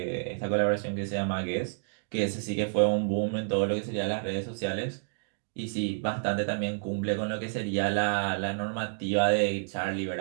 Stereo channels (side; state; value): left; silent; digital silence